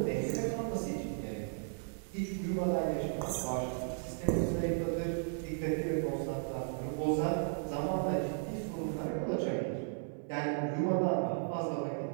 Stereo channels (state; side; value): silent; left; 54 dB below the other